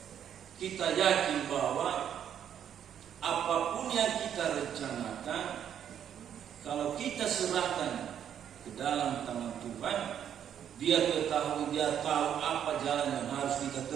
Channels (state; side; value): quieter; left; 9.3 dB